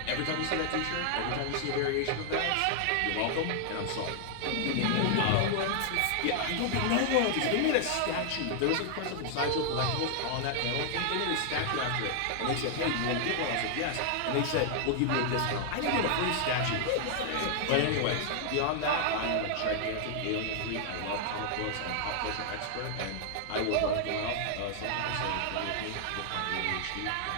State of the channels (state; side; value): different; both; correlation 0.00